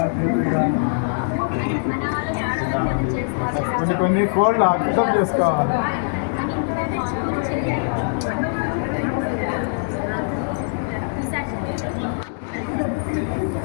కొన్ని కోళ్ళు అర్థం చేసుకోవాలి.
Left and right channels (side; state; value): right; silent; digital silence